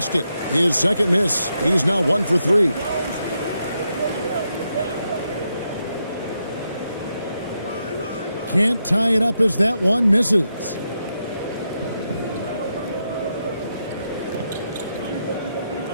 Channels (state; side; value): inverted; both; correlation -0.83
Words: His second miss. He's now 1 for 3. Can't tie it up as that one misses.